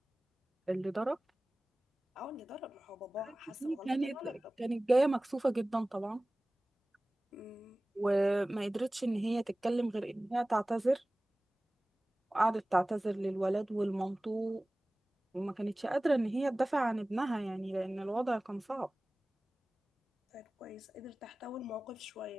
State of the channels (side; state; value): both; normal; correlation 0.98